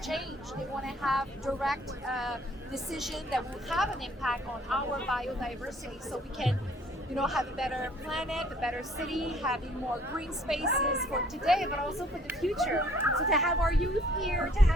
change. They want to have direct decision that will have an impact on our biodiversity so we can have a better planet, a better city, having more green spaces for today, but also for the future. So to have our youth here, to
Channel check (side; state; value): both; normal; correlation 0.59